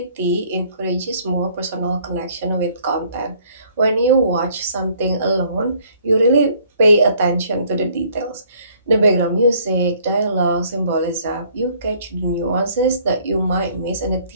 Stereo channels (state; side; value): inverted; both; correlation -0.60